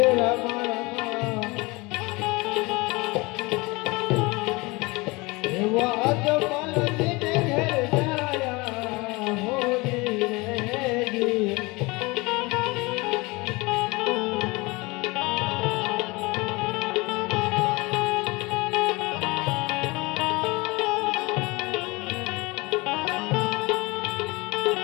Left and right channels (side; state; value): right; quieter; 24.6 dB